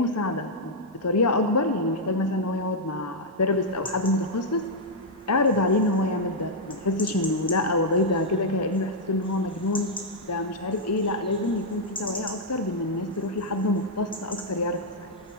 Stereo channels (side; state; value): both; normal; correlation -0.04